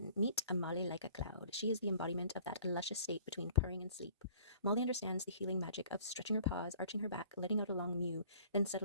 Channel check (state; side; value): inverted; both; correlation -0.53